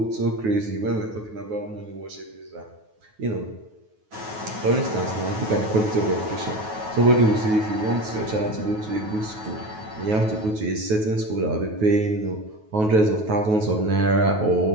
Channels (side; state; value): left; late; 9.3 ms